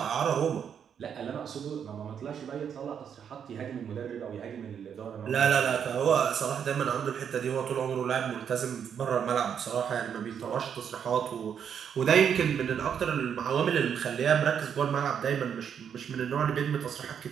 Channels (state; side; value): quieter; left; 7.9 dB